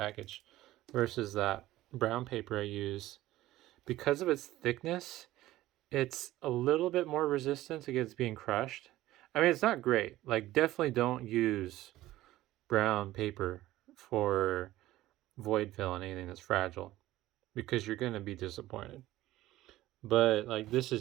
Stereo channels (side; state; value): left; quieter; 15.9 dB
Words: versus that brown paper I use. Because of its thickness, it's a little bit more resistant against being crushed. I mean, it's not great. Like, definitely don't use brown paper for void fill and anything that's fragile, because you're going to be disappointed. But like, this